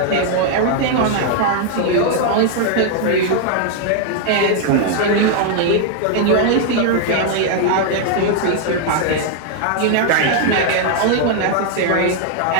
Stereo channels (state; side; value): different; both; correlation 0.00